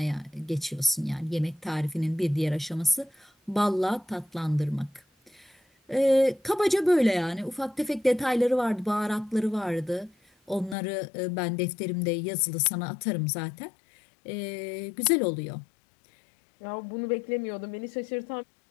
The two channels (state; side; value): drops out; right; at 10.8 s